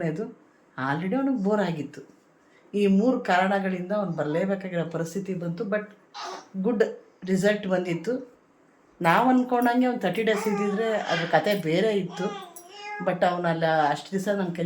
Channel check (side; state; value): both; identical; correlation 1.00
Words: ಆಲ್ರೆಡಿ ಅವನಿಗೆ ಬೋರ್ ಆಗಿತ್ತು. ಈ 3 ಕಾರಣಗಳಿಂದ ಅವ್ನು ಬರಲೇಬೇಕಾಗಿರೋ ಪರಿಸ್ಥಿತಿ ಬಂತು. ಬಟ್ ಗುಡ್ ರಿಸಲ್ಟ್ ಬಂದಿತ್ತು. ನಾವು ಅಂದ್ಕೊಂಡಂಗೆ ಒಂದು 30 ಡೇಸ್ ಇದ್ದಿದ್ರೆ ಅದ್ರ ಕತೆ ಬೇರೆ ಇತ್ತು. ಬಟ್ ಅವನಲ್ಲ ಅಷ್ಟು ದಿವಸ ನನ್ನ